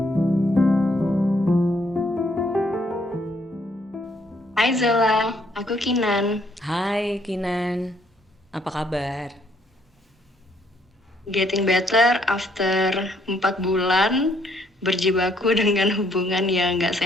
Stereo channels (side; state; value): both; normal; correlation 0.68